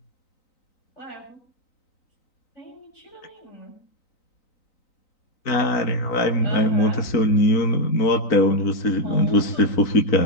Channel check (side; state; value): right; late; 3.9 ms